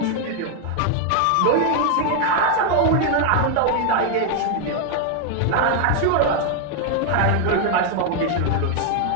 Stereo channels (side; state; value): both; different; correlation 0.00